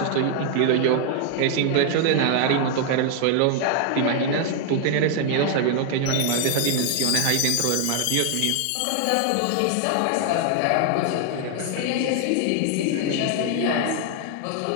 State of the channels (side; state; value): both; different; correlation 0.00